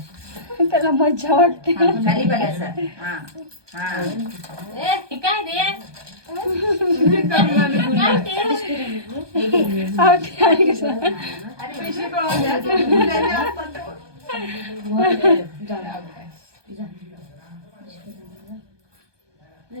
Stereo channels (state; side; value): late; left; 1.2 ms